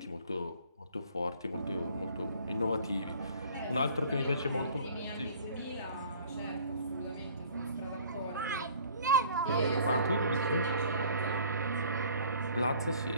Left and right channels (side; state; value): both; inverted; correlation -0.52